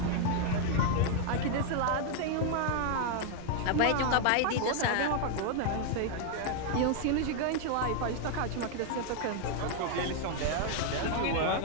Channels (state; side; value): different; both; correlation 0.00